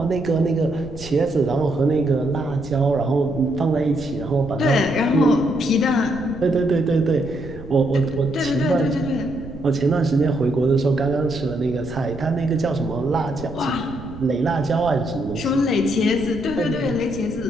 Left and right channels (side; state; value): right; noise; rumble, 14 dB below the sound